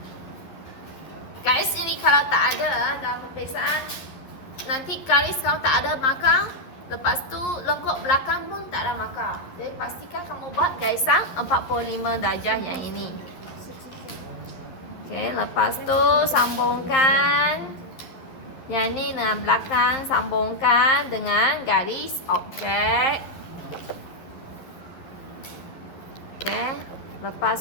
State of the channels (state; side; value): late; right; 11 ms